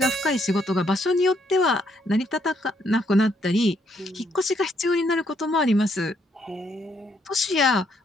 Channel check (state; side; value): normal; both; correlation 0.72